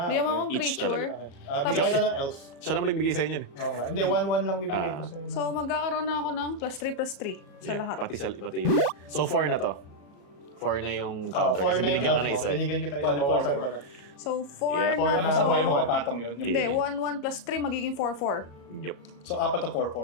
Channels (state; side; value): late; right; 34 ms